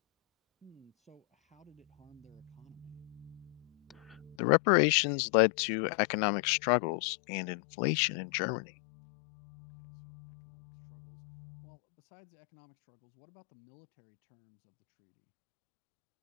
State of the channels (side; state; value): right; drops out; at 4.4 s